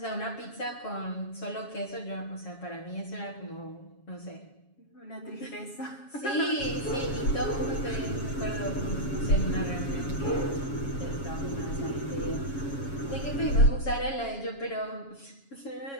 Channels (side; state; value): right; late; 7.3 ms